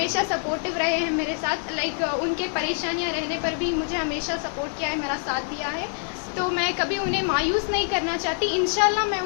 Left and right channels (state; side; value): silent; right; 62 dB below the other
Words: سپورٹیو رہے ہیں میرے ساتھ، ان کے پریشانیاں رہنے پر بھی مجھے ہمیشہ سپورٹ کیا ہے، میرا ساتھ دیا ہے۔ تو میں کبھی انہیں مایوس نہیں کرنا چاہتی، انشاءاللہ میں